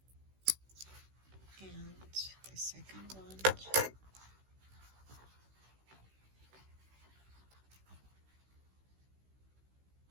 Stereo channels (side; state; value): left; late; 16 ms